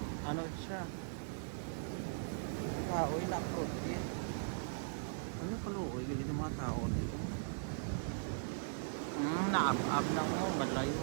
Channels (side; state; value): left; silent; digital silence